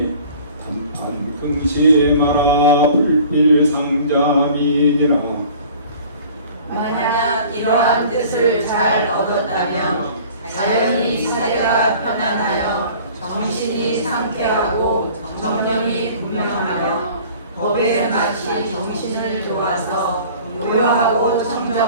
단판 긍심하라 불필상자민이라. 만약 이러한 뜻을 잘 얻었다면 자연히 사회가 편안하여 정신이 상쾌하고 정령이 분명하며 법에 마치 정신을 도와서 교화하고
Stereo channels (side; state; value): both; inverted; correlation -0.47